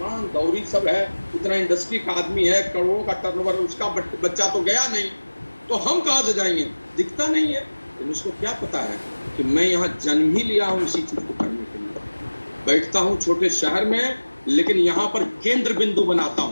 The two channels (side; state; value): both; inverted; correlation -1.00